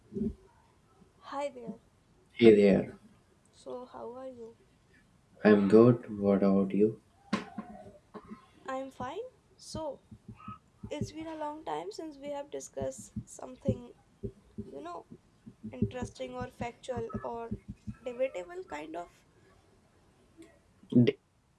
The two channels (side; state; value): both; identical; correlation 1.00